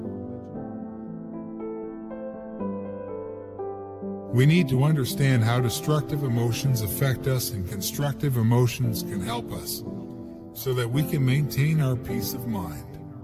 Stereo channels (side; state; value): both; identical; correlation 1.00